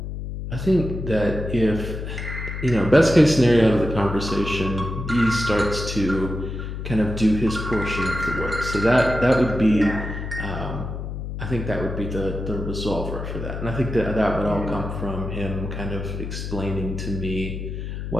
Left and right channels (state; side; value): noise; left; hum, 6 dB below the sound